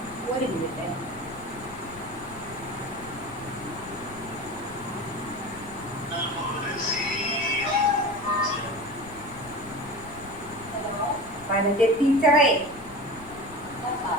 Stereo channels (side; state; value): left; noise; rumble, 17 dB below the sound